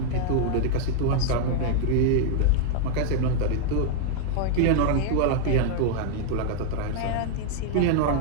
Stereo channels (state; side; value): different; both; correlation 0.00